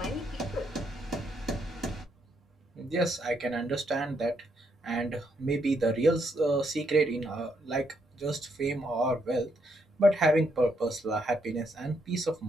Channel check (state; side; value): normal; both; correlation 0.76